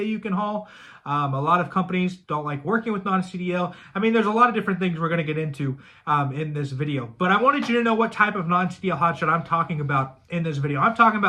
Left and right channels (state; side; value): identical; both; correlation 1.00